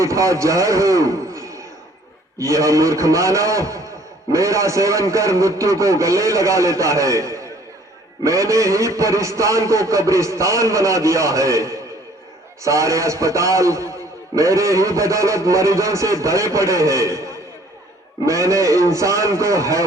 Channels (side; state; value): both; normal; correlation 0.57